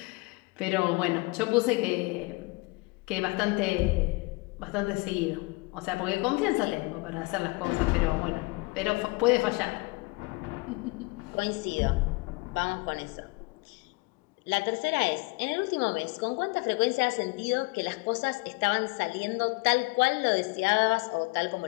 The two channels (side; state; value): right; quieter; 26.2 dB